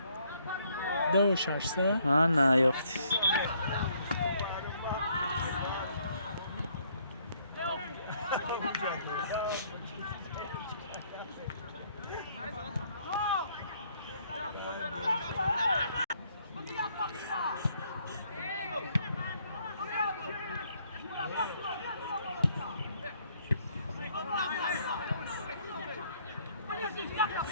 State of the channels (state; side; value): inverted; both; correlation -0.67